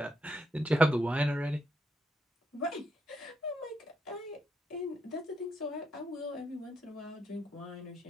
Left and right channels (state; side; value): normal; both; correlation 0.79